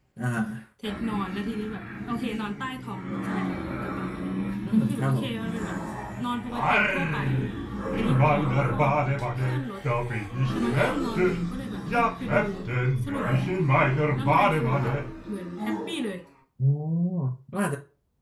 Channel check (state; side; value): identical; both; correlation 1.00